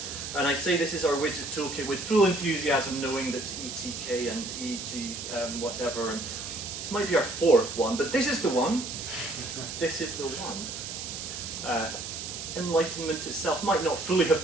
And I say this is our widget toolkit with full enthusiasm, knowing that ETK and EG whatever, and this might be our fourth one, but this is the one. This is the one. Enlightenment itself might not fully have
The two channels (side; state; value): right; noise; hiss, 7 dB below the sound